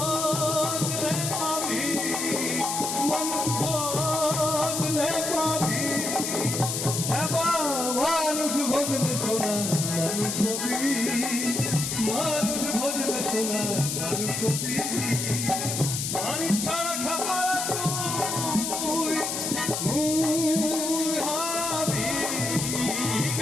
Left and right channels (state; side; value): noise; left; hiss, 2 dB below the sound